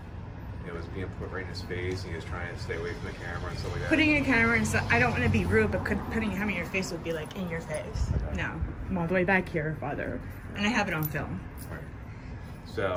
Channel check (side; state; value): both; identical; correlation 1.00